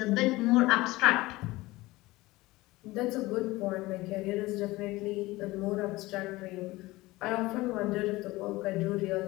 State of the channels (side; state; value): right; quieter; 19.8 dB